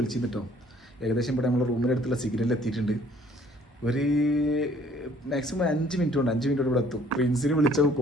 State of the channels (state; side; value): normal; both; correlation 0.58